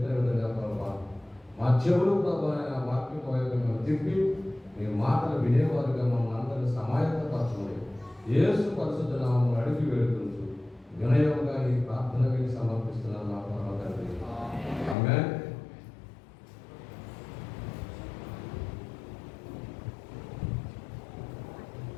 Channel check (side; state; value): right; drops out; at 15.0 s